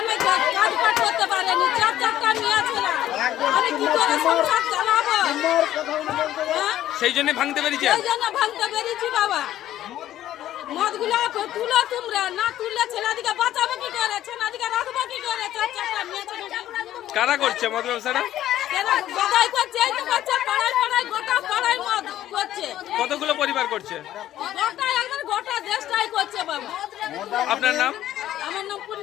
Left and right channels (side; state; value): right; quieter; 12.8 dB